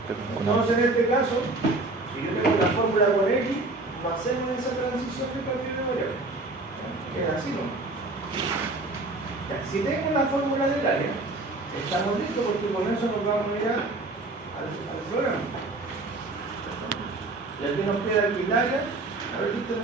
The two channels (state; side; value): quieter; left; 3.1 dB